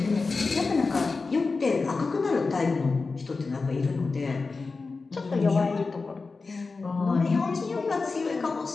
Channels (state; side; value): quieter; right; 4.1 dB